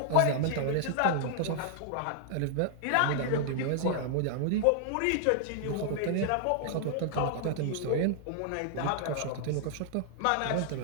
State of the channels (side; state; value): both; different; correlation -0.01